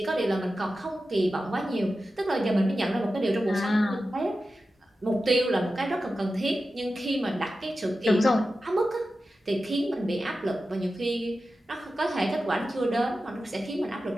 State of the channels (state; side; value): normal; both; correlation 0.93